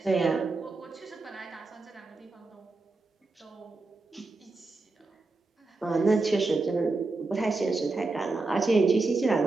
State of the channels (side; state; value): left; quieter; 3.5 dB